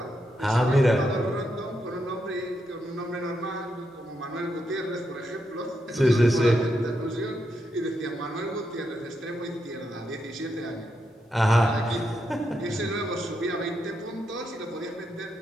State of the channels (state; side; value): normal; both; correlation 0.82